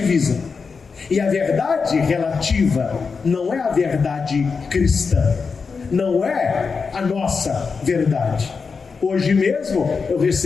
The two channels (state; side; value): quieter; right; 5.1 dB